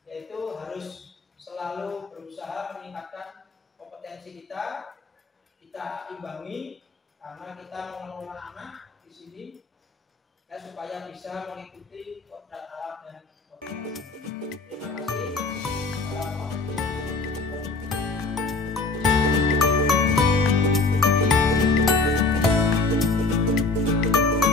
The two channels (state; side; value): quieter; right; 3.7 dB